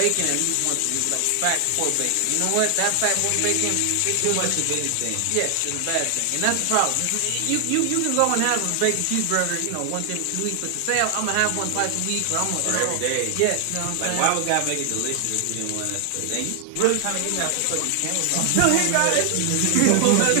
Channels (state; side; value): different; both; correlation 0.00